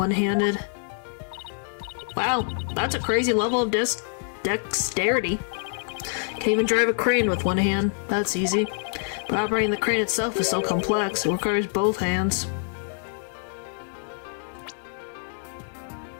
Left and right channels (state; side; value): silent; right; 61 dB below the other